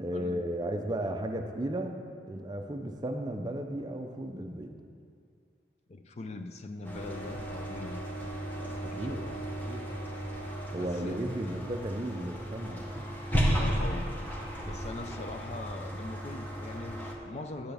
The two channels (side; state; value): both; normal; correlation 0.77